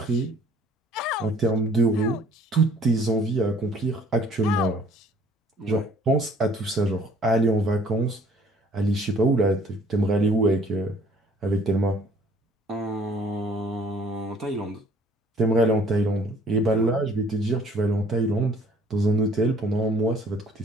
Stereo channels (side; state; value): both; normal; correlation 0.57